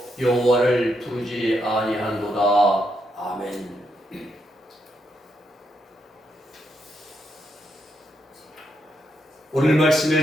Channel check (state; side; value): normal; both; correlation 0.80